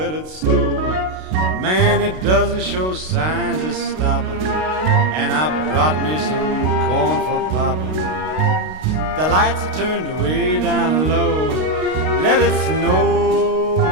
it snow. Man, it doesn't show signs of stopping, and I brought me some corn for popping. The lights are turned way down low. Let it snow,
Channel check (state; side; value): late; left; 32 ms